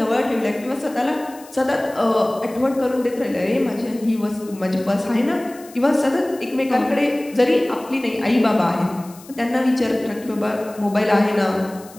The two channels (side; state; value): left; noise; hiss, 22 dB below the sound